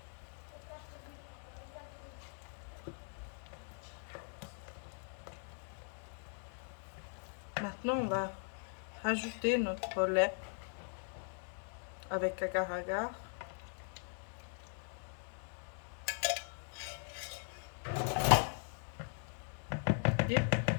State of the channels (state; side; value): silent; right; 51 dB below the other